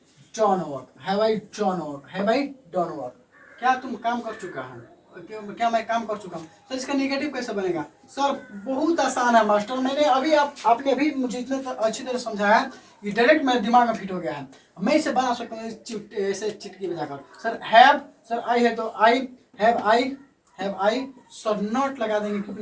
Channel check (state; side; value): identical; both; correlation 1.00